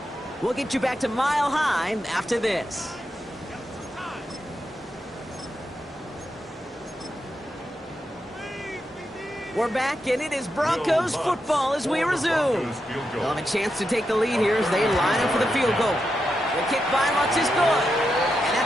We'll get you back to Mile High after this. We're back, and it is Broncos football as we resume. They'll have a chance to take the lead here as they line up for the field goal. The kick by Lutz is good. And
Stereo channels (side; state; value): both; normal; correlation 0.86